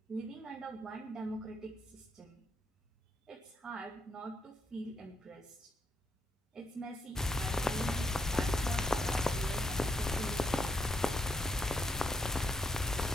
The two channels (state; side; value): normal; both; correlation 0.79